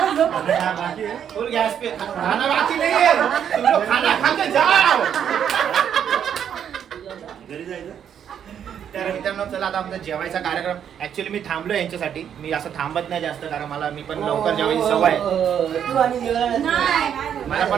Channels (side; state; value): left; quieter; 8.8 dB